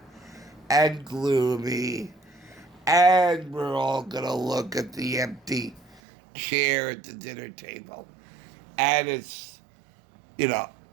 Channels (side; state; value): left; drops out; at 6.0 s